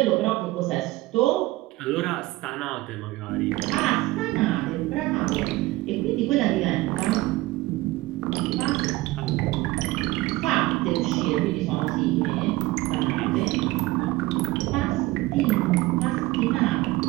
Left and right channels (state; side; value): quieter; left; 19.0 dB